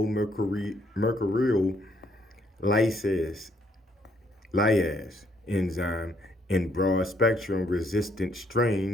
lyase enzyme, in broad-spectrum resistant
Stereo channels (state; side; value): normal; both; correlation 0.69